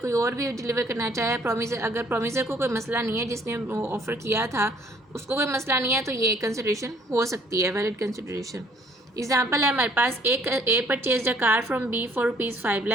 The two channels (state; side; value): normal; both; correlation 0.60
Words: और भी deliver करना चाहे, promiser अगर promiser को कोई मसला नहीं है, जिसने ऑफ़र किया था उसको कोई मसला नहीं है, तो ये कंसिडरेशन हो सकती है, वैलिड कंसिडरेशन। एग्जाम्पल है हमारे पास, एक A purchase a car from B for ₹5